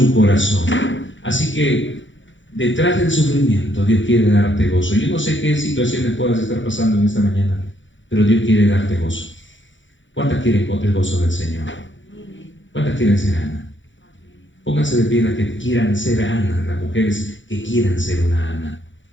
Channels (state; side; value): late; right; 0.55 ms